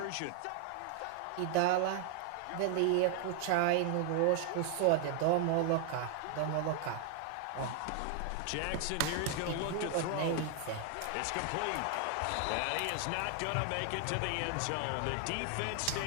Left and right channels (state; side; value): different; both; correlation 0.00